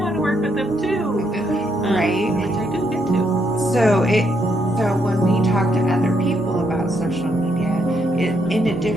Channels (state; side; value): noise; right; hum, 29 dB below the sound